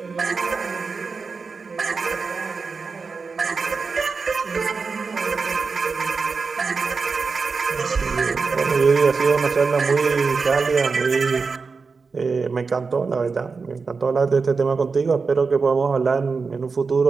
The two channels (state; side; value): quieter; left; 4.7 dB